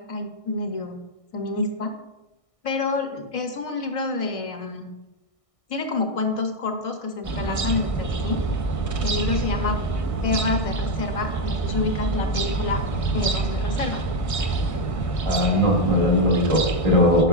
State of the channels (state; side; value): late; right; 1.6 ms